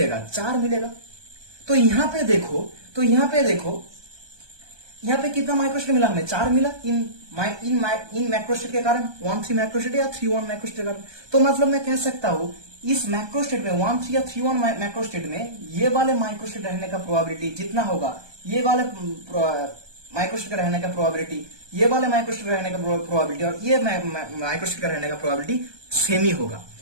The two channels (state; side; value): late; left; 1.2 ms